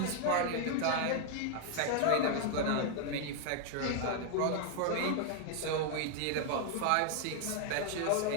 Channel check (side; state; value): both; different; correlation 0.00